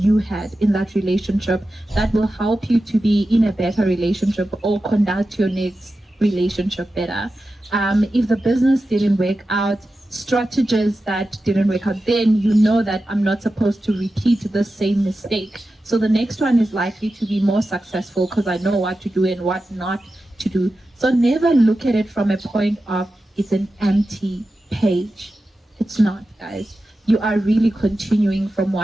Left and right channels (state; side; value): normal; both; correlation 0.92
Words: had in that relationship that will help you to be in a better relationship or conduct your next relationship better. If the business didn't work out, strategies that didn't work out, then you know that I'm not supposed to repeat the same mistake. So the next one is likely to be more successful because I know what to do and what not to do. So never look at it from a point of it's an empty page. It's not, guys. You are really continuing from